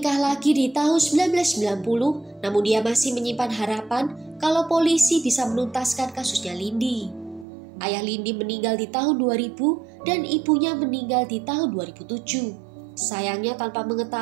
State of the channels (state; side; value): drops out; left; at 7.5 s